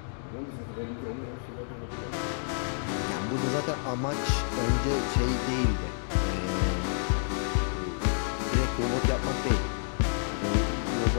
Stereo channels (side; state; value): right; silent; digital silence